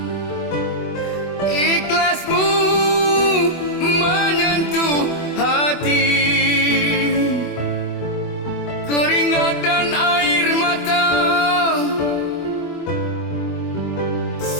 ikhlasmu menyentuh hati, keringat dan air mata,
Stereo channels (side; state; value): right; late; 24 ms